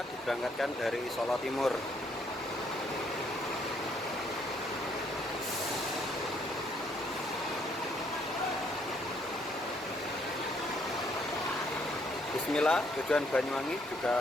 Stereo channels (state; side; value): normal; both; correlation 0.69